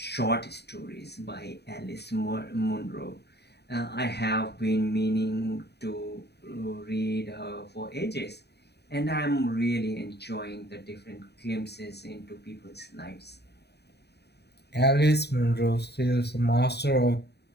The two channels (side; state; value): right; late; 0.48 ms